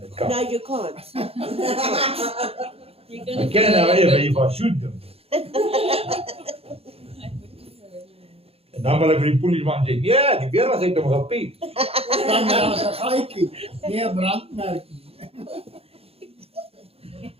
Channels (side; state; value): left; late; 0.28 ms